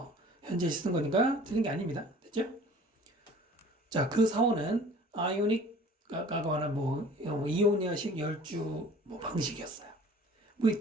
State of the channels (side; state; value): both; normal; correlation 0.48